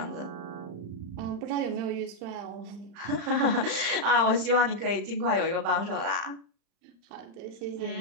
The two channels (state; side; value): late; left; 35 ms